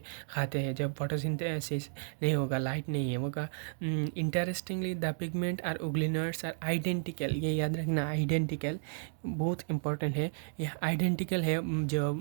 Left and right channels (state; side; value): silent; left; digital silence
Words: खाते हैं जब फोटोसिंथेसिस नहीं होगा, लाइट नहीं है होगा। Interestingly the pigment are euglenoids are identical, ये याद रखना, आइडेंटिकल बहुत इंपॉर्टेंट है, ये आइडेंटिकल है, जो